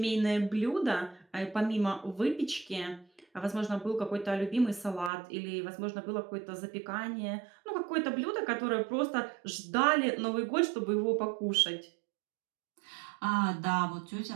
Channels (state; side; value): drops out; left; at 5.1 s